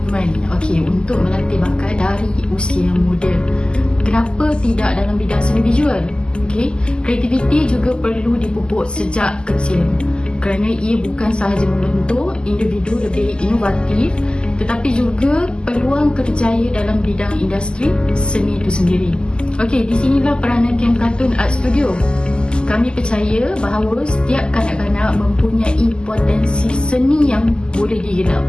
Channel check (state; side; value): late; right; 0.048 ms